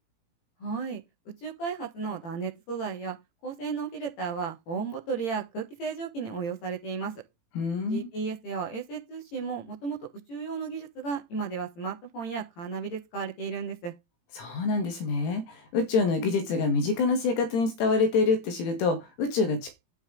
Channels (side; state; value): right; late; 18 ms